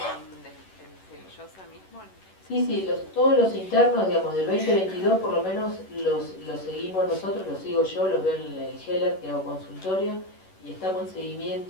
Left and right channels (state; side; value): late; right; 11 ms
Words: Cenillosa mismo? Sí, todos los internos, digamos, del 2022 por lo menos los seguimos nosotros, los sigo yo, los veo en el GELAR, que hago consultorio, y estamos en